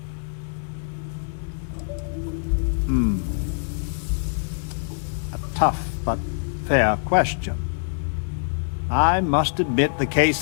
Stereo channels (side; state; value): right; silent; digital silence